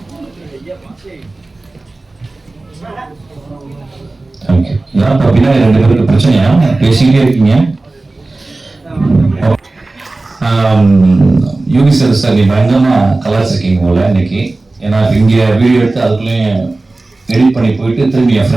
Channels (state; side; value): quieter; left; 3.2 dB